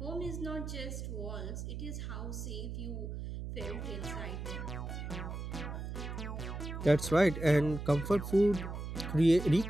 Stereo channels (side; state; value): right; noise; hum, 6 dB below the sound